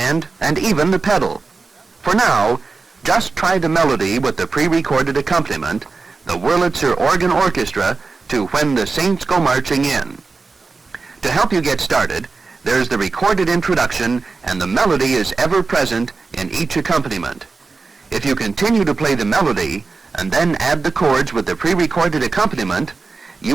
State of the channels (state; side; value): quieter; left; 4.1 dB